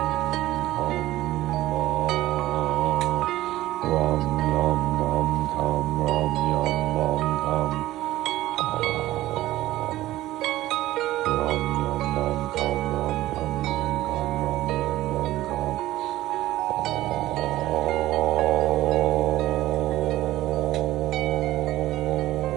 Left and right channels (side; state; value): left; quieter; 15.8 dB